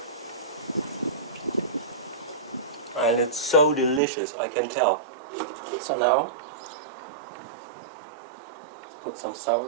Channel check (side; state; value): left; drops out; at 4.0 s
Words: And it's so delicious, I can tell. So now, let's put some